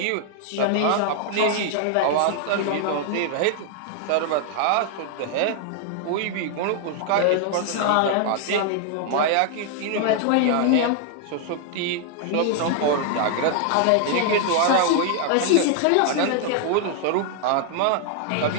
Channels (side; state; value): both; different; correlation 0.00